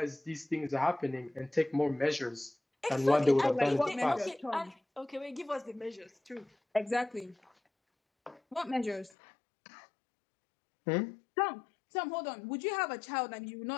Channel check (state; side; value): drops out; right; at 9.1 s